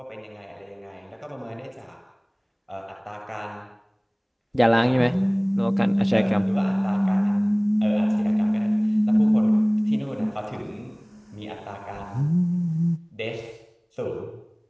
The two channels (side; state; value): both; identical; correlation 1.00